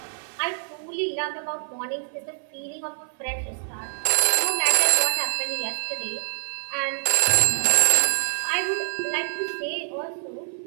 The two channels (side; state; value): left; silent; 58 dB below the other